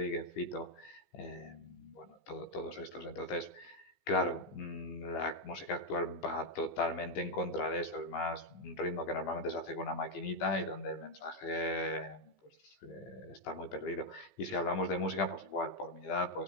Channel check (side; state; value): right; late; 15 ms